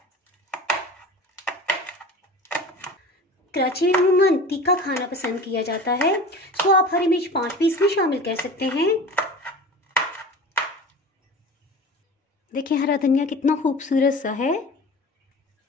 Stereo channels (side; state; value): both; normal; correlation 0.36